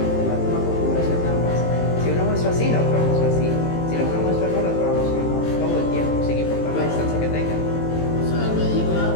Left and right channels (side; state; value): right; late; 18 ms